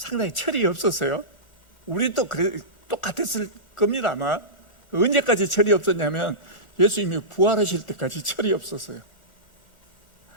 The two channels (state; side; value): late; right; 1.4 ms